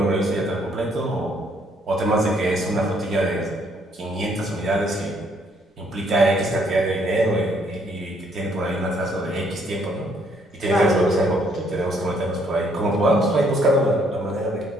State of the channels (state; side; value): normal; both; correlation 0.68